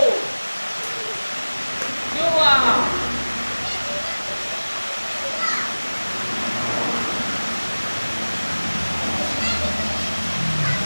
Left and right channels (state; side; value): inverted; both; correlation -1.00